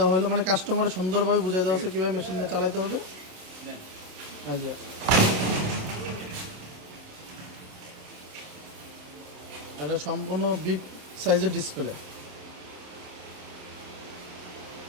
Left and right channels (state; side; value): late; left; 27 ms